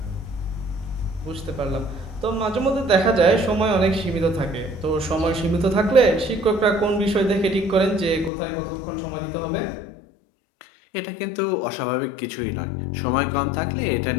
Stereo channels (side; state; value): right; drops out; at 8.3 s